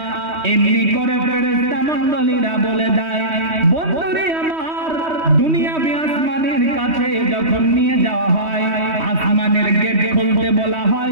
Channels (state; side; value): late; left; 3.1 ms